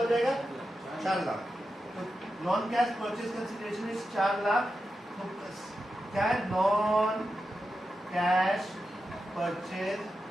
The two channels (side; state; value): both; normal; correlation 0.90